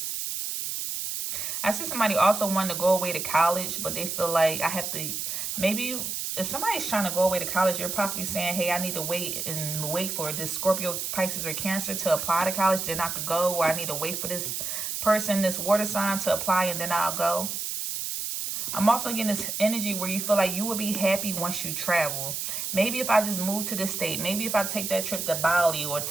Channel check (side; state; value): right; noise; hiss, 3 dB below the sound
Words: I see somebody also wanting to go away to college, but they feel like maybe if somebody's trying to go away to college, you're possibly saying, hey, I need to wait for this Scorpio, Pisces, or Cancer to apply to college, then I could go, or I need to wait for this person, this water sign, to apply, and then I'll go. I'm also getting this energy where you feel like you will be happy once you travel. Maybe if I just move to this state, maybe if I take that trip to Bali or